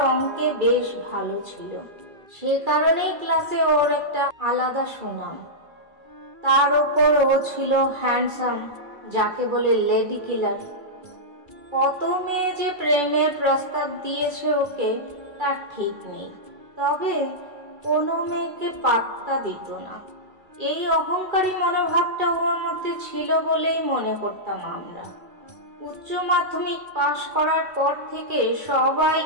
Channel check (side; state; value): left; late; 2.4 ms